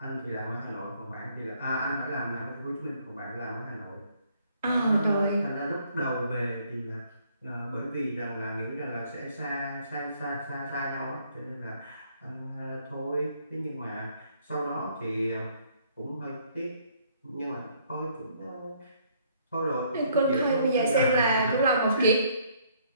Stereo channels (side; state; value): both; inverted; correlation -0.65